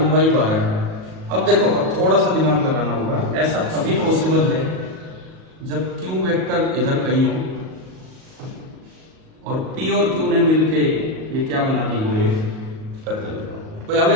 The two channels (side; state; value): left; late; 38 ms